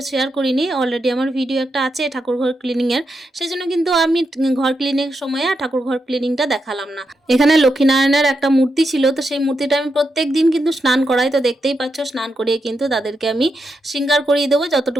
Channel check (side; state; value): both; normal; correlation 0.85